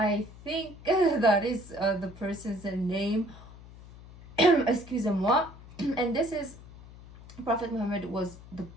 think that is the person's name. Excuse me. And this is Prophet Muhammad was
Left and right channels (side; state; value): left; noise; hum, 19 dB below the sound